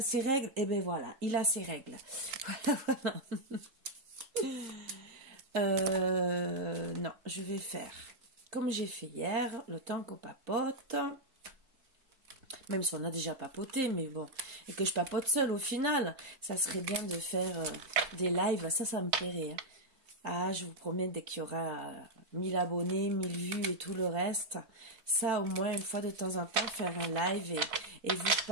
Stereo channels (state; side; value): late; left; 3.8 ms